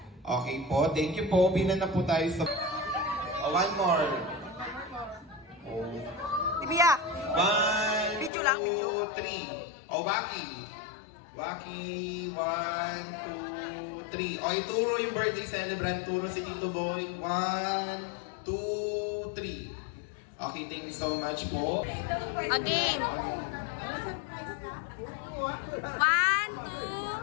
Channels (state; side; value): drops out; right; at 8.3 s